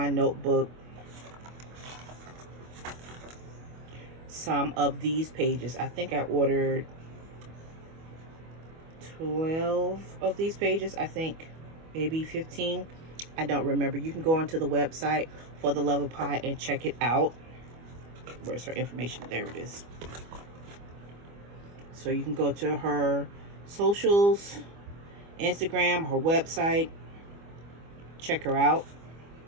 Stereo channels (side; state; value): left; late; 25 ms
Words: notebook some of these pages. I think I ordered 12 of these pages. I think maybe 15. I don't remember. You can go onto the website For the Love of Pi and check it out. Where's her information? There it is. So you can go to her socials, Instagram, her website, check her out.